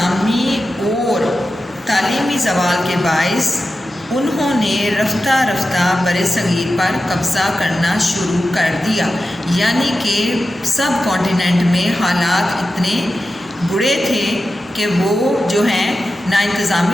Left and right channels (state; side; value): normal; both; correlation 0.92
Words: और तालीमी ज़वाल के बाइस उन्होंने रफ्ता रफ्ता बड़े सगीर पर कब्ज़ा करना शुरू कर दिया। यानी कि सब कॉन्टिनेंट में हालात इतने बुरे थे कि वो जो हैं ना